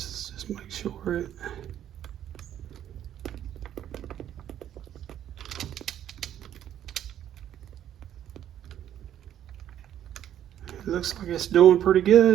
just make sure it. It looks like it's doing pretty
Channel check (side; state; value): left; quieter; 10.8 dB